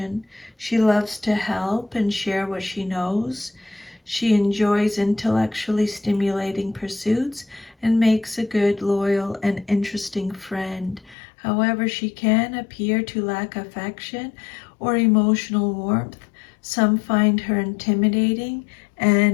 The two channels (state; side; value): drops out; right; at 11.2 s